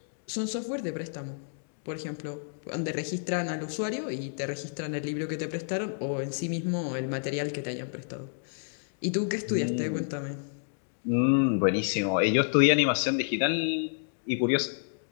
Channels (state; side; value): silent; right; digital silence